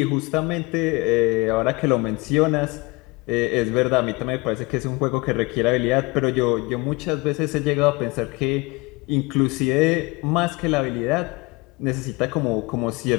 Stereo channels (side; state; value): right; quieter; 25.8 dB